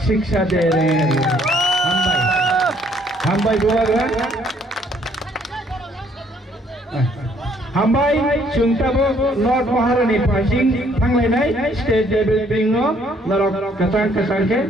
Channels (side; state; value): both; normal; correlation 0.64